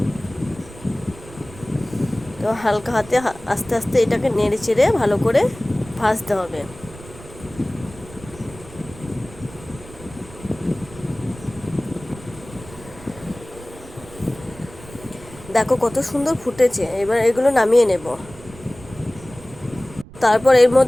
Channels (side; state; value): right; noise; rumble, 18 dB below the sound